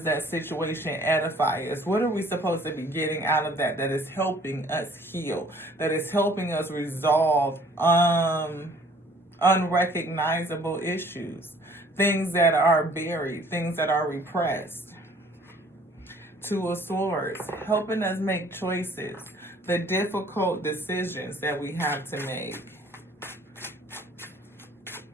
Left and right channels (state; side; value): normal; both; correlation 0.56